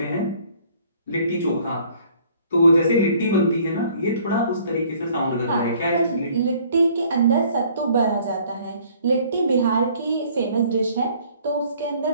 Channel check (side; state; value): both; inverted; correlation -0.58